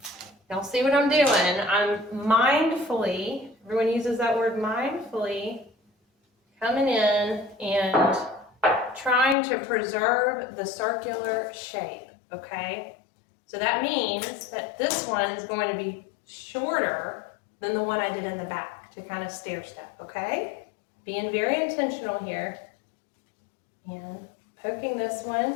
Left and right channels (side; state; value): right; drops out; at 9.3 s